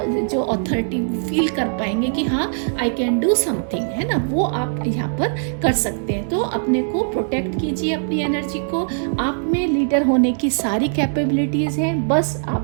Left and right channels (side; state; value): left; silent; digital silence